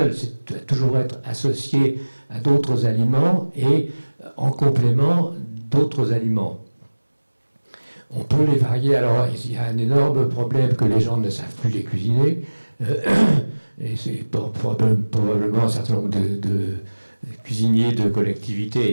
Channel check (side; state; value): both; inverted; correlation -1.00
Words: C'est doit toujours être associé à d'autres aliments et en complément d'autres aliments. On peut les varier. Alors, il y a un énorme problème que les gens ne savent plus les cuisiner. Et c'est probablement un certain nombre de cuisiniers de